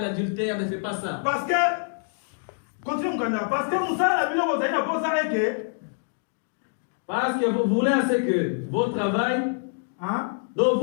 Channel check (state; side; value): silent; right; digital silence